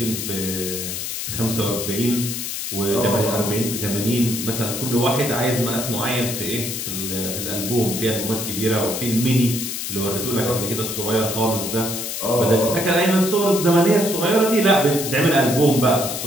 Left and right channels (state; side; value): noise; left; hiss, 4 dB below the sound